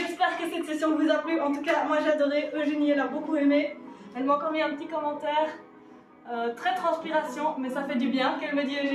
que cette session vous a plu. En tout cas, moi j'ai adoré. Eugénie, elle a beaucoup aimé. Elle m'a encore mis un petit commentaire. Très transpiration, mais ça fait du bien, qu'elle me dit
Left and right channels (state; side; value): identical; both; correlation 1.00